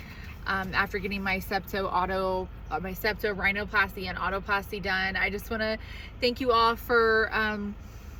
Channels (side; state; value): both; identical; correlation 1.00